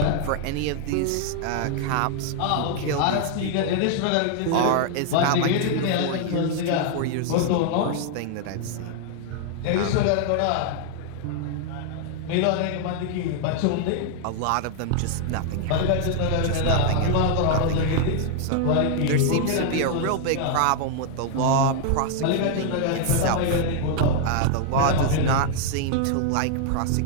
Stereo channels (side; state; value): both; different; correlation 0.00